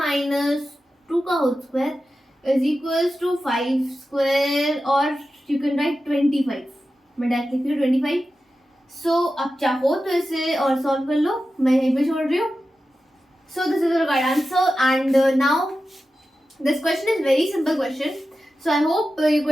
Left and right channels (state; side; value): normal; both; correlation 0.92